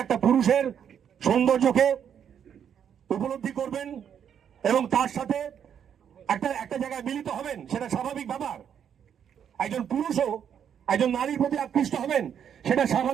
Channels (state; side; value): quieter; left; 8.5 dB